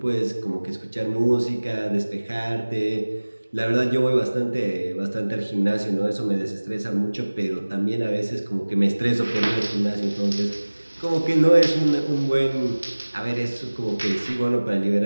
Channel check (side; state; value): both; inverted; correlation -1.00